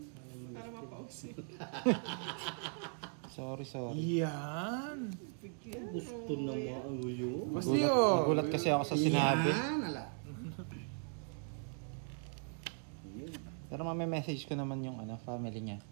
Para mapause. Sorry. Yan! Gusto na mauyo. Basti yun! Nagulat kasi ako sa sinabi. Yan, ala. Yun. Pero message ko naman yung family niya.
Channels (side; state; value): left; silent; 52 dB below the other